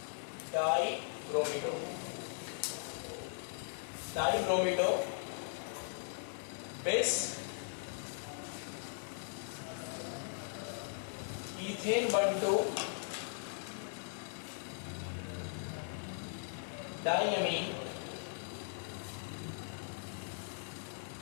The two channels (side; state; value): right; silent; digital silence